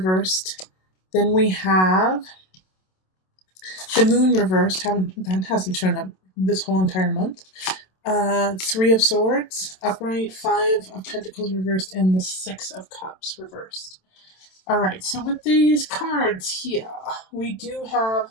Then we have the Moon reversed. That hasn't shown up this whole entire month. 3 of Swords upright, 5 of Pentacles reversed, and the 6 of Cups reversed. All right, so with these cards here, we do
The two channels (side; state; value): right; late; 27 ms